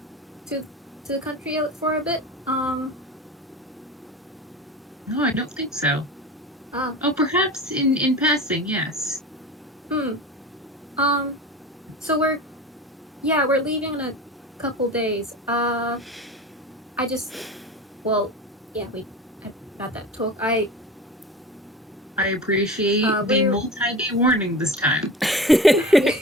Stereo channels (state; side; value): normal; both; correlation 0.33